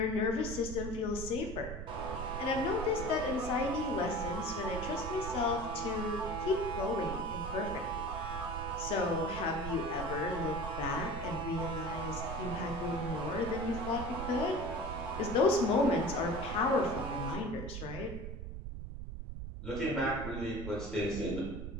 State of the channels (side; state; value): right; noise; rumble, 7 dB below the sound